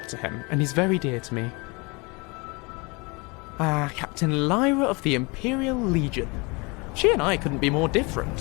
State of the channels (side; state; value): right; quieter; 28.1 dB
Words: to him, and he's very dear to me. Captain Lyra of the Imperial Legion. She and I couldn't be more